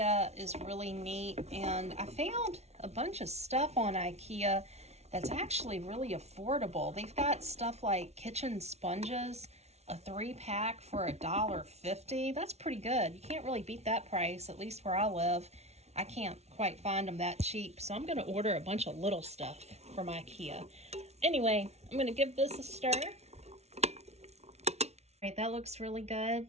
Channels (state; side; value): late; left; 0.31 ms